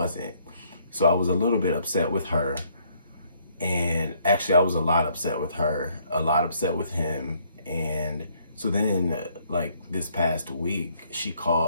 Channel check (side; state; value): both; inverted; correlation -0.67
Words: So I was a little bit upset with her. And actually I was a lot upset with her, a lot upset with him. And so then like this past week, she